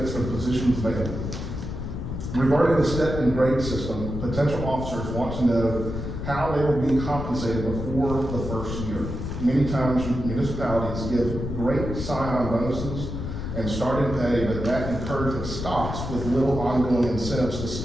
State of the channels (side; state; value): left; noise; rumble, 5 dB below the sound